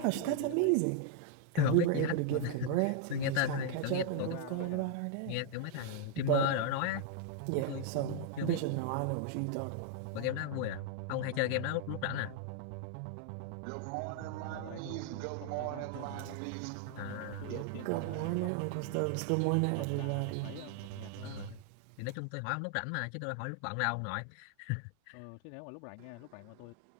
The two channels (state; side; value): different; both; correlation 0.00